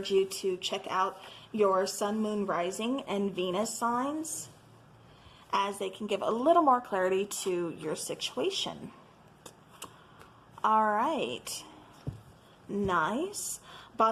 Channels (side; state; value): both; identical; correlation 1.00